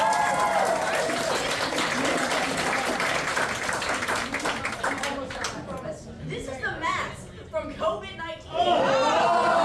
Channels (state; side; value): identical; both; correlation 1.00